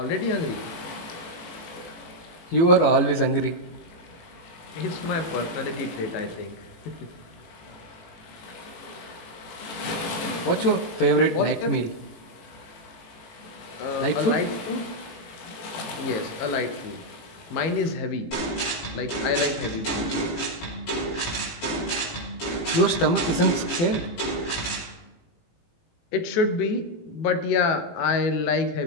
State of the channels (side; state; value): right; late; 18 ms